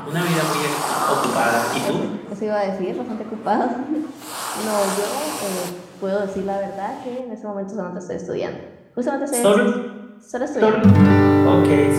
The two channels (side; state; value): both; identical; correlation 1.00